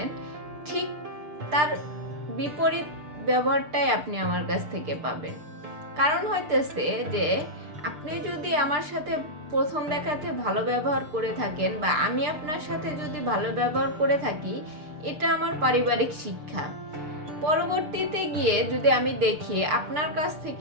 ঠিক তার বিপরীত ব্যবহারটাই আপনি আমার কাছ থেকে পাবেন। কারণ হইতেছে যে আপনি যদি আমার সাথে প্রথম দেখাতে ভালো ব্যবহার করে থাকেন বা আমি আপনার সাথে যদি ভালো ব্যবহার করে থাকি, এটা আমার পারিবারিক শিক্ষা। পরবর্তীতে গিয়ে যদি আমি দেখি আপনার কাছ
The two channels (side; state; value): left; late; 6.6 ms